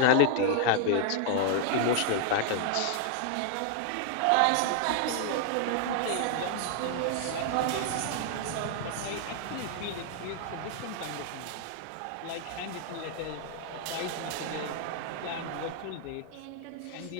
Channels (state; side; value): different; both; correlation 0.00